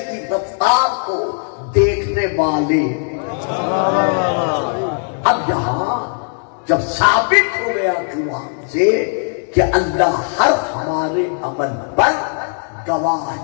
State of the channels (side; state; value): right; silent; 56 dB below the other